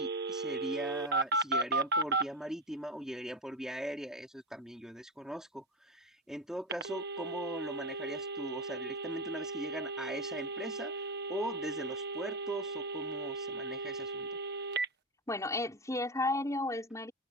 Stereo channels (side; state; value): both; normal; correlation 0.16